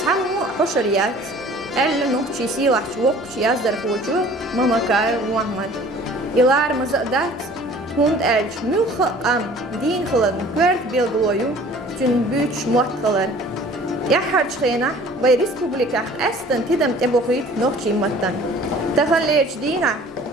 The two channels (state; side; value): normal; both; correlation 0.49